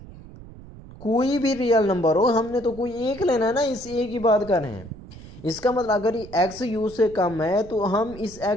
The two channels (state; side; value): noise; right; rumble, 17 dB below the sound